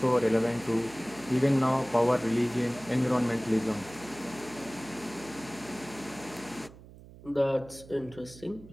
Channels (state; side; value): noise; right; hum, 19 dB below the sound